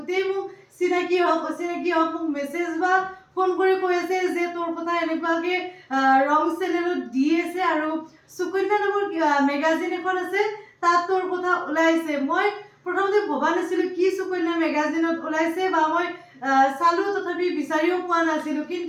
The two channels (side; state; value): both; identical; correlation 1.00